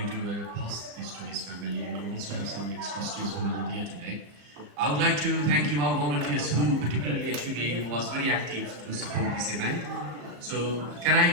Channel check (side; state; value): left; late; 34 ms